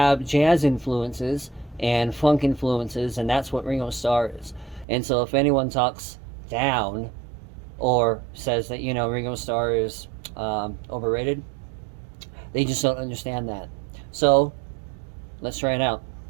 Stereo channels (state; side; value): drops out; left; at 4.9 s